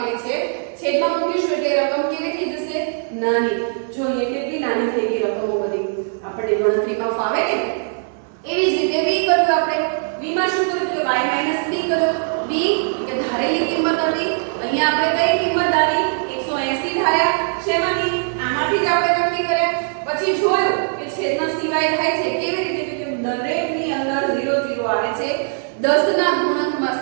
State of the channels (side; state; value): left; silent; 57 dB below the other